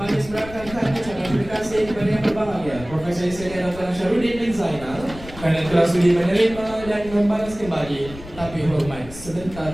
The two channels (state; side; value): noise; left; rumble, 15 dB below the sound